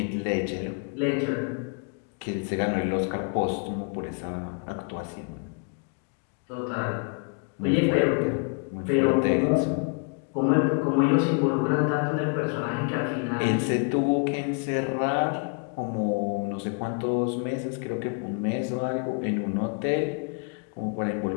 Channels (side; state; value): right; quieter; 39.6 dB